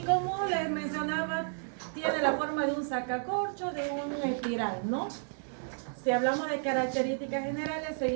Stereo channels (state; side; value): silent; left; digital silence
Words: como les mencionaba, tiene la forma de un sacacorcho, de una espiral, ¿no? Si hablamos de características generales,